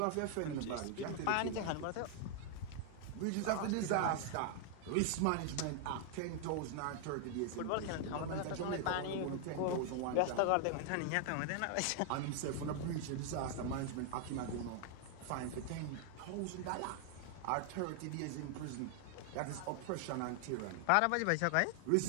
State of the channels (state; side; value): different; both; correlation 0.00